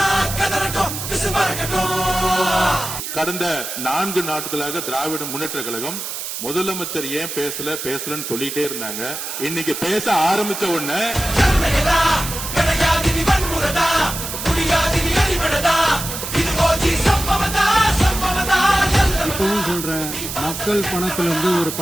கடந்த 4 நாட்களாக திராவிட முன்னேற்ற கழகம் முதலமைச்சர் ஏன் பேசலன்னு சொல்லிட்டே இருந்தாங்க. இன்னைக்கு பேச ஆரம்பிச்ச உடனே இப்பவும் சொல்றேன், மக்கள் பணத்துல இருந்து ஒரு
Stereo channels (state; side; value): noise; right; hiss, 6 dB below the sound